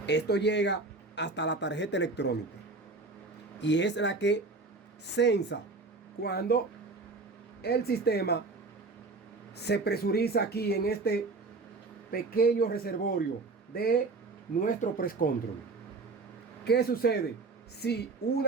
Esto llega hasta la tarjeta electrónica y es la que sensa cuando el sistema se presuriza aquí en este pequeño reservorio de nuestro press control. ¿Qué sucede? Si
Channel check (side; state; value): left; quieter; 3.7 dB